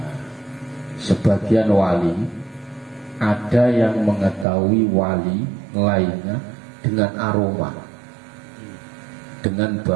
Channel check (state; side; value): drops out; left; at 4.5 s